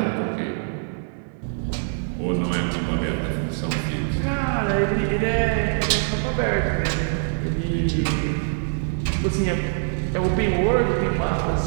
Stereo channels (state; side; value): silent; left; 63 dB below the other